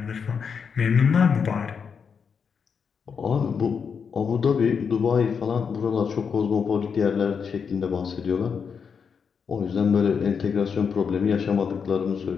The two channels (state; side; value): quieter; right; 6.3 dB